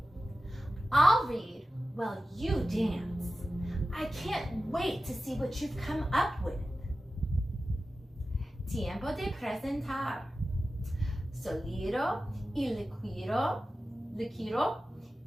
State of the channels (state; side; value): normal; both; correlation 0.94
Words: I'll read while you dance. I can't wait to see what you've come up with. Tiempo de presentar. Sólido y líquido